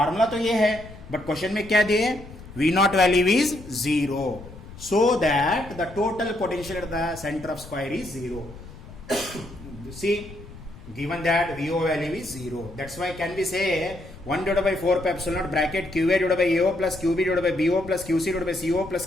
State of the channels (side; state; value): left; noise; rumble, 16 dB below the sound